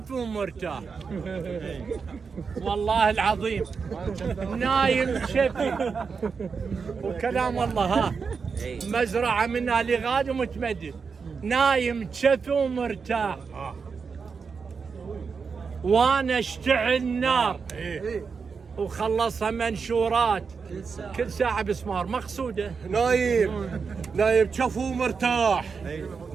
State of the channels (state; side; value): quieter; left; 5.4 dB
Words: ومرتاح والله العظيم نايم تشفي وكلام الله ها مزرعة منها لغاد ومتمدد، نايم تشفي ومرتاح وانا اشتعل نار وخلصها منشورات كل ساعة بسمار مقصودة. نايم شفو مرتاح،